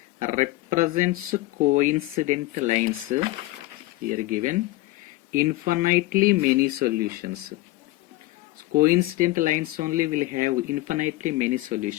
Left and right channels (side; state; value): right; quieter; 18.7 dB